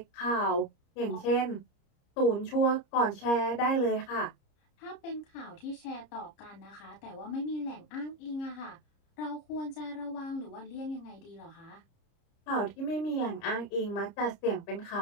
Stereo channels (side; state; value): right; late; 30 ms